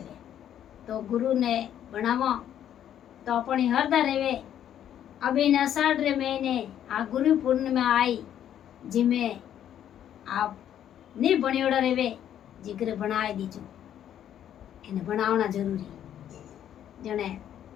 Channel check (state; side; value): quieter; right; 10.4 dB